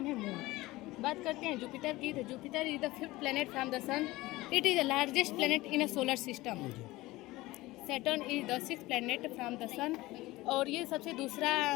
है मून। बात करते हैं जुपिटर की। तो Jupiter is the 5th planet from the sun. It is the largest planet in a solar system. Saturn is the 6th planet from the sun, और ये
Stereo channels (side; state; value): right; quieter; 19.2 dB